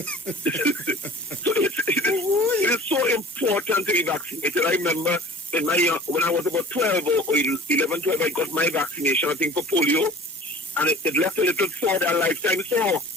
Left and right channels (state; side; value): normal; both; correlation 0.44